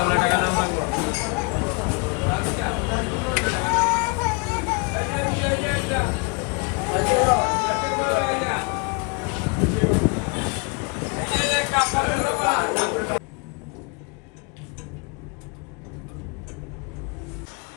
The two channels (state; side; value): quieter; right; 32.2 dB